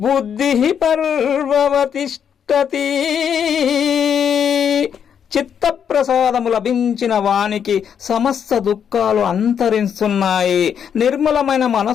బుద్ధిః పర్వవతిష్ఠతి. చిత్తప్రసాదము లభించిన వానికి సమస్త దుఃఖాలు అంతరిస్తున్నాయి. నిర్మలమైన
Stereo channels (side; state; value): right; quieter; 8.0 dB